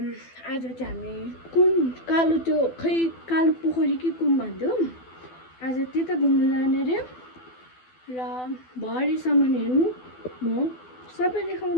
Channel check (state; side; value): late; right; 12 ms